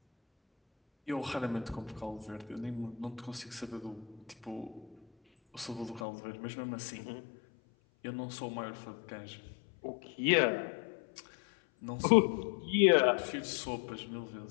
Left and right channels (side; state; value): right; drops out; at 6.1 s